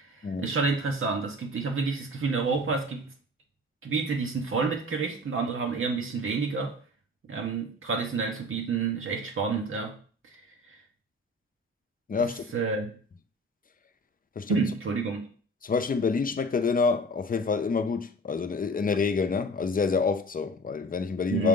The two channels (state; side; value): normal; both; correlation 0.40